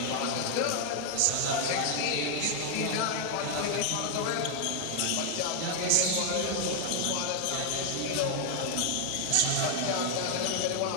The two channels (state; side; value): different; both; correlation 0.00